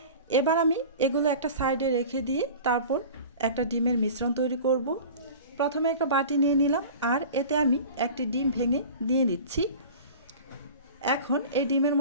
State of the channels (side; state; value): both; inverted; correlation -0.38